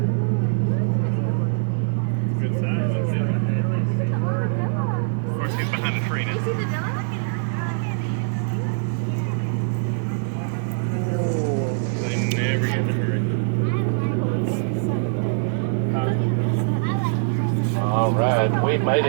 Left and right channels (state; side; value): silent; left; digital silence